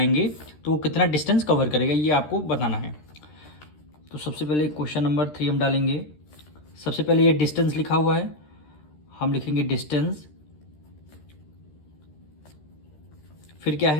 तो वो कितना डिस्टेंस कवर करेगा, ये आपको बताना है। तो सबसे पहले क्वेश्चन नंबर 3 हम डालेंगे। सबसे पहले ये डिस्टेंस लिखा हुआ है, हम लिखेंगे डिस्टेंस, फिर क्या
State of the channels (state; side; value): late; right; 13 ms